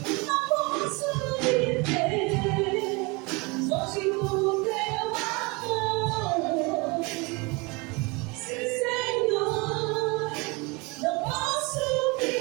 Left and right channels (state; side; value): quieter; left; 27.4 dB